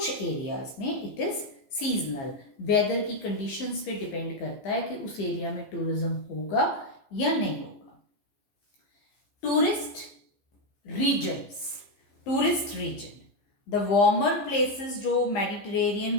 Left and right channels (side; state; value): right; late; 15 ms